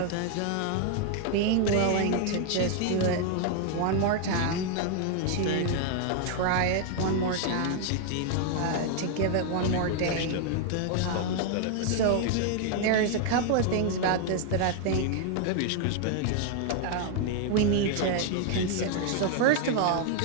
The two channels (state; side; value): different; both; correlation 0.00